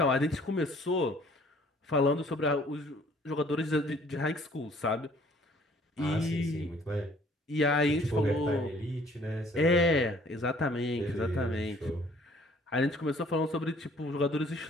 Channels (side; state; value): both; normal; correlation 0.57